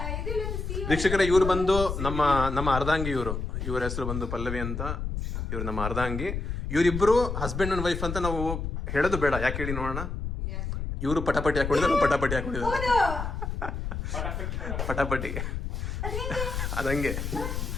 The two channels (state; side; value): noise; left; rumble, 4 dB below the sound